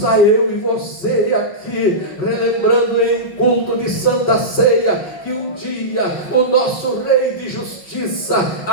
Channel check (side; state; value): right; late; 5.4 ms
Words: eu e você aqui, relembrando em culto de Santa Ceia, que um dia o nosso Rei de Justiça,